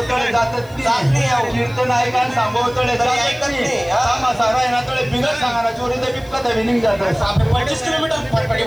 तळे जातच नाही कीर्तन ऐकायला सांगो तळे ऐकत नाही सारा आहे ना तळे बिगर सांगा चोरी तर बिपका तर विनिंग जात 25 किलोमीटर फटफटी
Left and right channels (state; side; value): noise; left; hiss, 26 dB below the sound